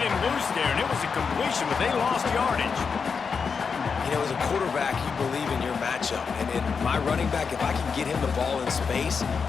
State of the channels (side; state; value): right; quieter; 5.6 dB